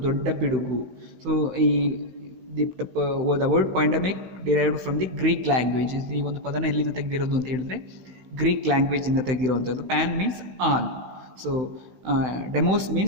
ದೊಡ್ಡ ಪಿಡುಗು. So ಈ the word pandemic derived from the Greek language. ಈ ಒಂದು ಪದನ ಎಲ್ಲಿಂದ ತೆಗೆದಿರೋದು ಅಂತ ಹೇಳಿದ್ರೆ ಗ್ರೀಕ್ ಲ್ಯಾಂಗ್ವೇಜಿಂದ ತೆಗೆದಿರುವಂಥದ್ದು. Pan means all, so demos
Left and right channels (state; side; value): late; left; 16 ms